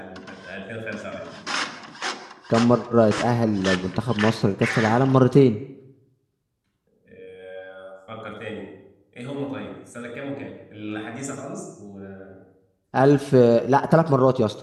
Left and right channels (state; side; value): identical; both; correlation 1.00